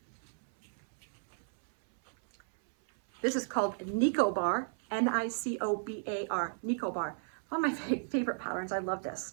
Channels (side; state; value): left; silent; 55 dB below the other